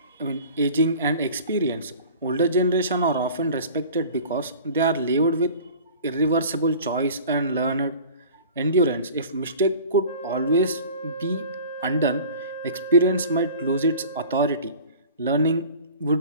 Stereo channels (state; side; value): inverted; both; correlation -0.43